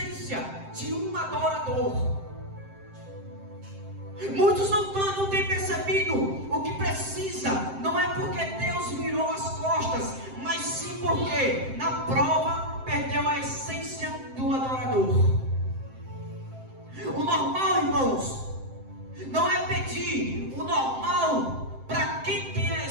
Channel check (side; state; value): left; late; 7.7 ms